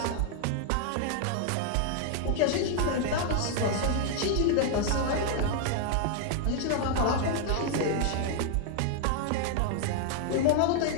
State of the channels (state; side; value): different; both; correlation 0.00